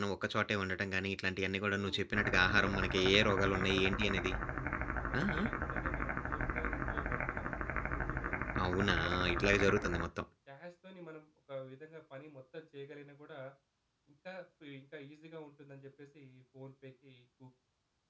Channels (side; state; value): both; identical; correlation 1.00